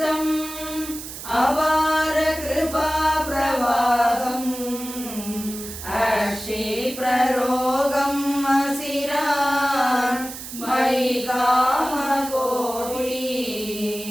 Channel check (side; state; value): right; noise; hiss, 11 dB below the sound